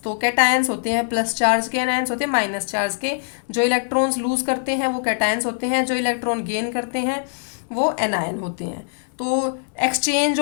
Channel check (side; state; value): right; silent; digital silence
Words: तो कैटायंस होते हैं प्लस चार्ज के, एनायंस होते हैं माइनस चार्ज के। जो इलेक्ट्रॉन्स लूज करते हैं वो कैटायंस होते हैं, जो इलेक्ट्रॉन गेन करते हैं वो एनायन होते हैं। तो exchange